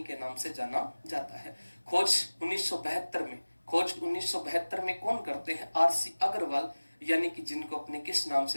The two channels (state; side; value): inverted; both; correlation -1.00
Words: के नाम से जाना जाता है। खोज 1972 में कौन करते हैं? आरसी अग्रवाल, यानी कि जिनको अपने किस नाम